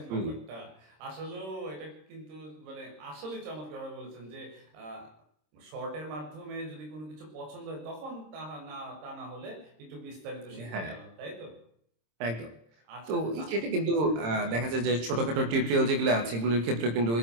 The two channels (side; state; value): left; late; 26 ms